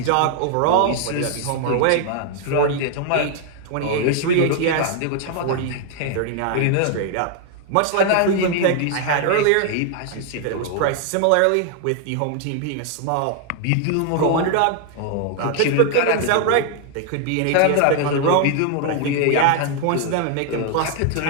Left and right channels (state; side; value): different; both; correlation 0.00